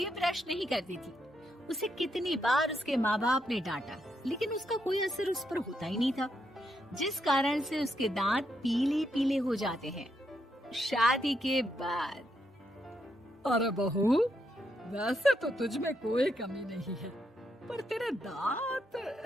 ब्रश नहीं करती थी। उसे कितनी बार उसके माँ बाप ने डांटा, लेकिन उसका कोई असर उस पर होता ही नहीं था, जिस कारण से उसके दांत पीले पीले हो जाते हैं। शादी के बाद। अरे बहू, वैसे तो तुझ में कोई कमी नहीं है, पर तेरे दांत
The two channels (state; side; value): normal; both; correlation 0.80